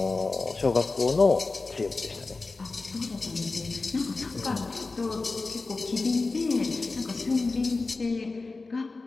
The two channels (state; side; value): quieter; right; 3.7 dB